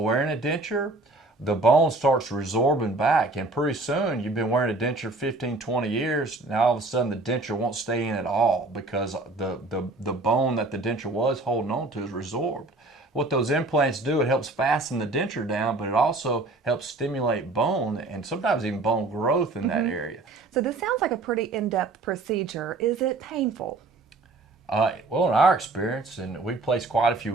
a denture, the bone starts resorbing back, and pretty soon you've been wearing a denture 15, 20 years, now all of a sudden the denture won't stay in at all because the bone that the denture was holding on to is resorbed. What those implants do, it helps fasten the denture down, but it also helps stimulate bone and sometimes even bone growth in that area. So this sounds like a pretty in-depth procedure. Is it painful? Well, in our experience, and we've placed quite a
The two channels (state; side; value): quieter; left; 3.2 dB